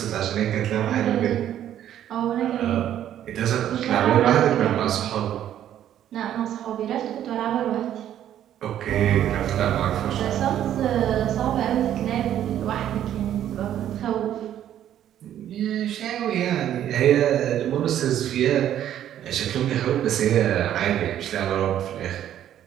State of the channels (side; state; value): left; quieter; 11.1 dB